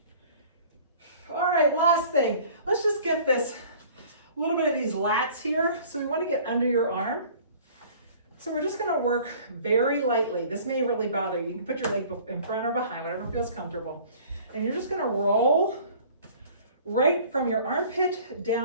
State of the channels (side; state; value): both; inverted; correlation -0.49